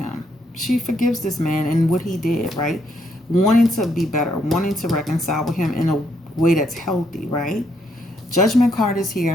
She forgives this man and what he did, right? Wanting to be better, wanting to reconcile with him in a way that's healthy, right? Judgment card is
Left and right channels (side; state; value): both; normal; correlation 0.74